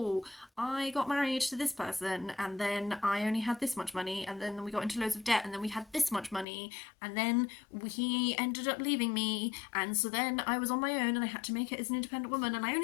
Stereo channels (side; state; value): right; drops out; at 6.5 s